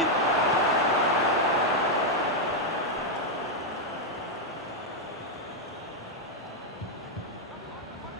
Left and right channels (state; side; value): normal; both; correlation 0.00